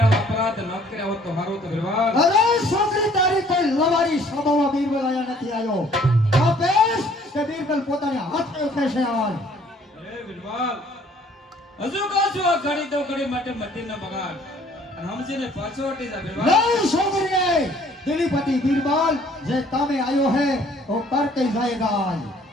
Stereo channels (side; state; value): both; normal; correlation 0.58